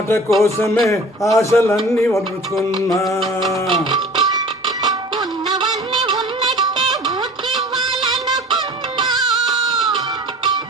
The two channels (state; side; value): normal; both; correlation 0.43